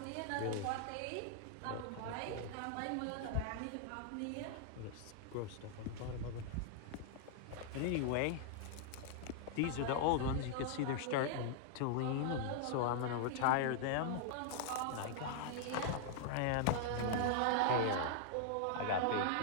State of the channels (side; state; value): both; different; correlation -0.01